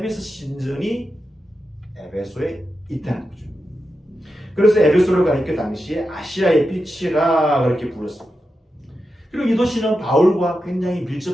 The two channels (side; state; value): both; normal; correlation 0.89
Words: 신전이 에베소에 있다는 거죠. 그래서 에베소를 가리켜 당시에 아시아의 빛이라 그렇게 불렀습니다. 그리고 이 도시는 바울과 굉장히